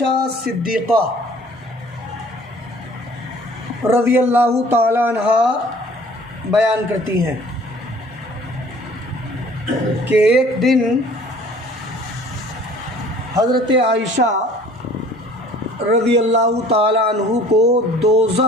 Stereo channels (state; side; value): normal; both; correlation 0.51